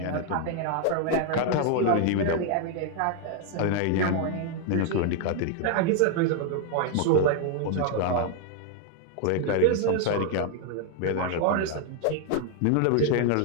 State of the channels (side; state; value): both; different; correlation 0.00